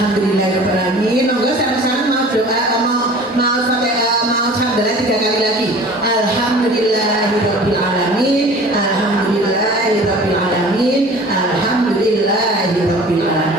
Monggo sama-sama mau doa, mau sampai mau hamdalah 3 kali lagi. Alhamdulillahirobbilalamin, alhamdulillahirobbilalamin,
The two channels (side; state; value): both; normal; correlation 0.44